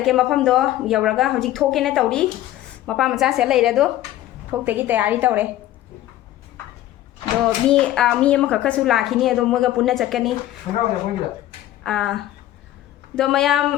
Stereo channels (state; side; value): quieter; right; 13.9 dB